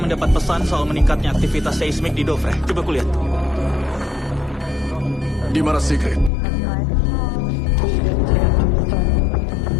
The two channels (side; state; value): right; drops out; at 6.3 s